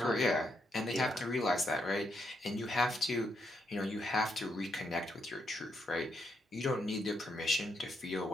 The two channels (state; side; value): normal; both; correlation 0.78